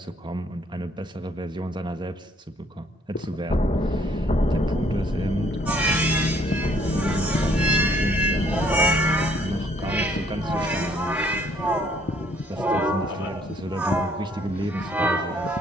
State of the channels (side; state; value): both; normal; correlation 0.64